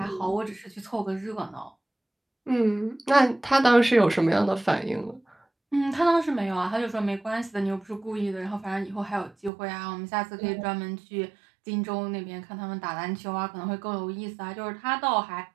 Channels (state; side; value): drops out; left; at 9.5 s